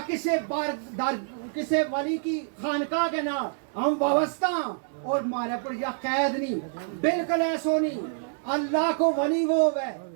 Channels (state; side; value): silent; left; digital silence